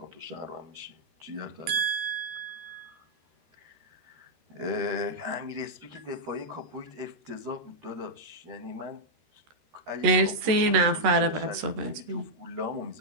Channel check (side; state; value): left; late; 13 ms